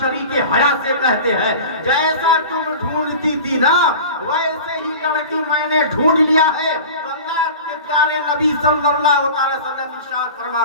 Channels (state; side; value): inverted; both; correlation -0.37